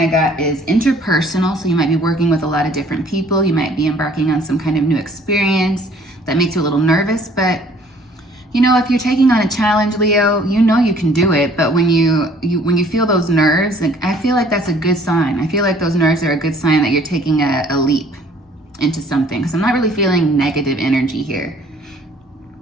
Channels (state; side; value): normal; both; correlation 0.57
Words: got is interpersonal. So you might be working with a lot of different people. You might be embarking on some kind of new experience that makes you a little nervous. But you know, if you're taking on a challenge, Leo, you know you can do it. But when you feel those nerves, like, I feel like that's a good sign. I feel like those nerves are a good sign that you're taking a leap into something. So I'm not really feeling negative energy here.